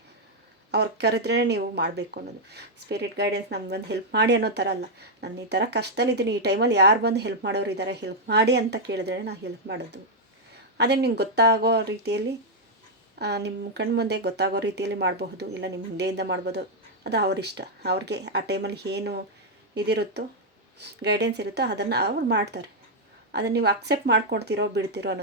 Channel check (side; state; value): both; normal; correlation -0.02